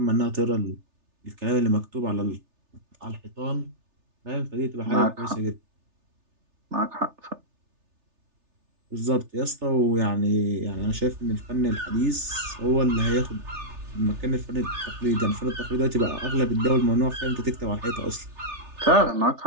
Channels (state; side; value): late; left; 3.3 ms